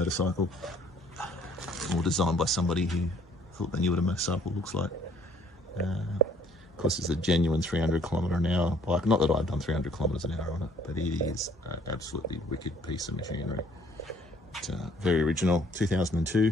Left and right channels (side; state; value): both; normal; correlation 0.60